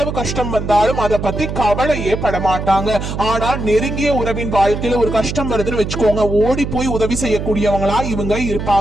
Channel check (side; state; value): right; noise; hum, 5 dB below the sound